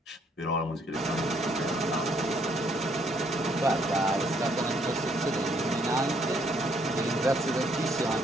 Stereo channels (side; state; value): both; normal; correlation 0.68